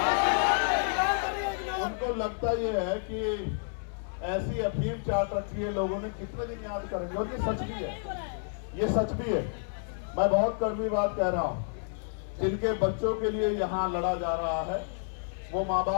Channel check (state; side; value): silent; right; digital silence